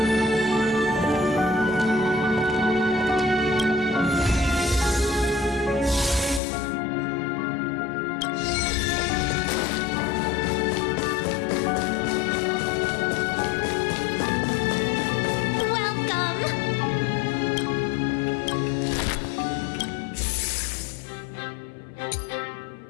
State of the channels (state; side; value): drops out; right; at 6.4 s